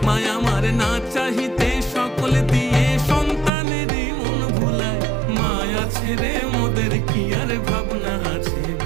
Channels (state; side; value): drops out; left; at 3.5 s